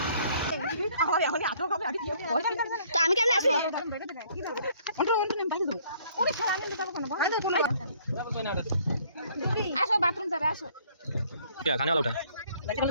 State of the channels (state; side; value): inverted; both; correlation -0.61